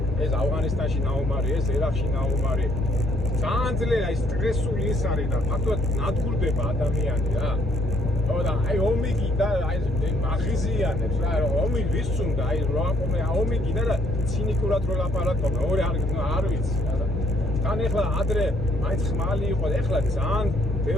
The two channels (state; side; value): normal; both; correlation 0.67